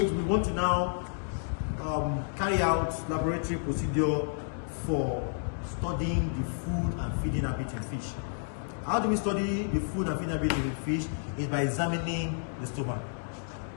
we want to now carry out laboratory procedure for studying the food and feeding habit in fish. How do we study the food and feeding habit in fish? Is by examining the stomach.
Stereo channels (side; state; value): right; silent; digital silence